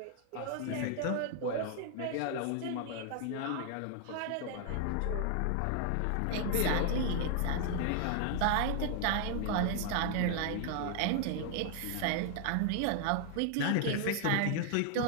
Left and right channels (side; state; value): both; different; correlation 0.00